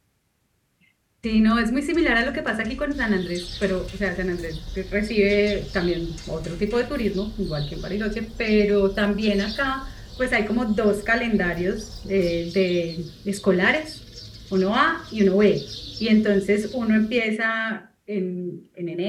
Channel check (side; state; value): both; identical; correlation 1.00